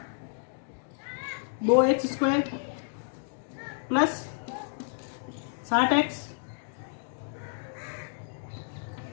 2x square plus 60x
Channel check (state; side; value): silent; right; digital silence